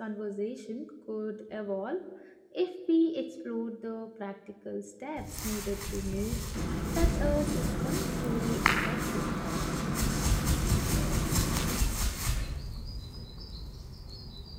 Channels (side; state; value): both; identical; correlation 1.00